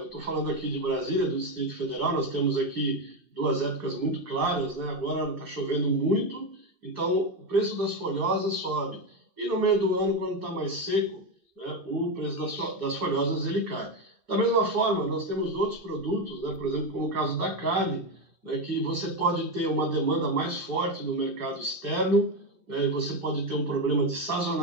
estou falando aqui de Brasília, do Distrito Federal, nós temos aqui 2 épocas muito claras, né? Agora está chovendo muito, então o preço das folhosas sobe. E no meio do ano, quando está mais seco, né, o preço das folhosas ele cai. Da mesma forma, nós temos outros produtos, né, por exemplo, como o caso da carne, né, que você pode ter uma demanda mais forte no mercado externo, e você pode ter um problema de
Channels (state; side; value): late; left; 2.6 ms